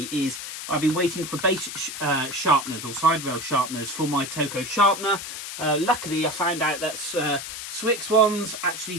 is I've been waiting for base sharpeners or side rail sharpeners for my Toco sharpener. Luckily, I found out that Swix ones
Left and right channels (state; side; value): noise; left; hiss, 8 dB below the sound